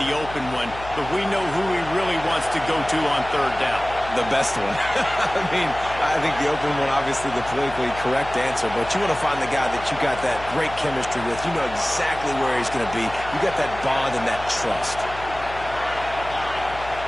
open one, but we know who he really wants to go to on 3rd down. The best one. I think the open one, obviously the politically correct answer, but you want to find the guy that you got that great chemistry with. You know exactly where he's going to be. You got that bond and that trust.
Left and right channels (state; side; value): noise; left; hum, 14 dB below the sound